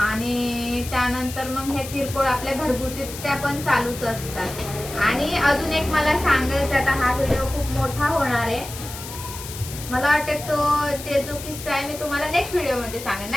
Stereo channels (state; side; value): noise; left; hiss, 11 dB below the sound